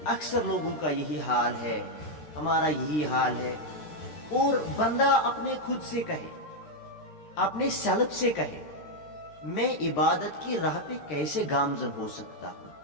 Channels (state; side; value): late; right; 13 ms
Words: اکثر لوگوں کا یہی حال ہے، ہمارا یہی حال ہے، اور بندہ اپنے خود سے کہے، اپنے سیلف سے کہے، میں عبادت کی راہ پہ کیسے گامزن ہو سکتا ہوں؟